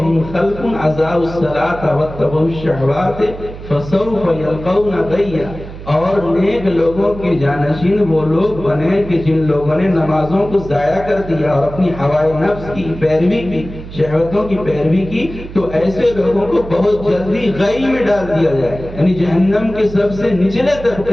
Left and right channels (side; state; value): right; noise; hum, 13 dB below the sound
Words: خَلْفٌ أَضَاعُوا الصَّلَاةَ وَاتَّبَعُوا الشَّهَوَاتِ فَسَوْفَ يَلْقَوْنَ غَيًّا۔ اور نیک لوگوں کے جانشین وہ لوگ بنے کہ جن لوگوں نے نمازوں کو ضائع کر دیا اور اپنی ہوائے نفس کی پیروی کی، شہوتوں کی پیروی کی، تو ایسے لوگوں کو بہت جلدی غی میں ڈال دیا جائے گا، یعنی جہنم کے سب سے نچلے